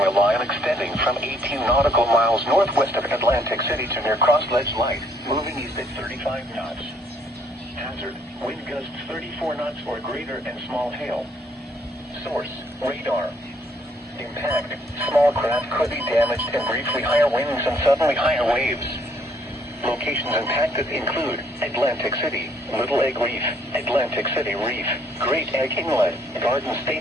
a line extending from 18 nautical miles northwest of Atlantic City to near Cross Ledge Light, moving east at 35 knots. Hazard, wind gusts 34 knots or greater and small hail. Source, radar. Impact, small craft could be damaged and briefly higher winds and suddenly higher waves. Locations impacted include Atlantic City, Little Egg Reef, Atlantic City Reef, Great Egg Inlet, Garden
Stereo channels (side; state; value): both; normal; correlation 0.66